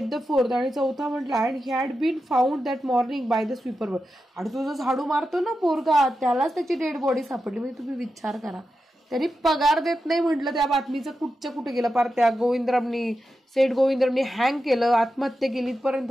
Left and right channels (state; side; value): normal; both; correlation 0.89